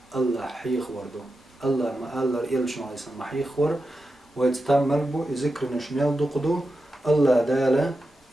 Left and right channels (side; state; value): both; normal; correlation 0.90